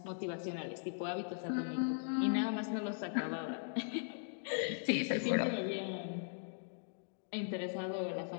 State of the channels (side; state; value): right; silent; digital silence